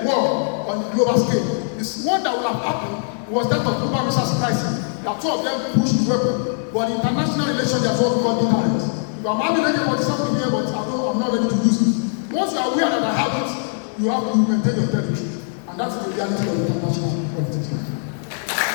war on the global scale. This one that will have happened was that of Cuban Missile Crisis. That two of them pushed the weapon. But in international relations, they are what we call deterrence. I'm having something here, but I'm not ready to use it. Once you are aware that I have it, you have to maintain your territory. And that's the reality of international politics.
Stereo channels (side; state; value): right; silent; digital silence